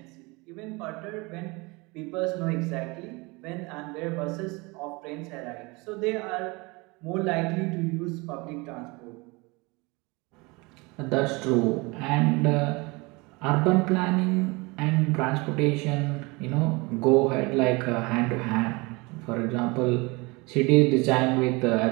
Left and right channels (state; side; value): quieter; left; 25.8 dB